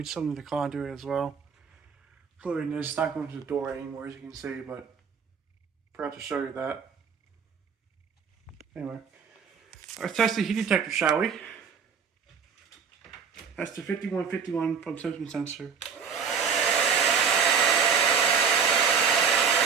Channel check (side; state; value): left; quieter; 6.5 dB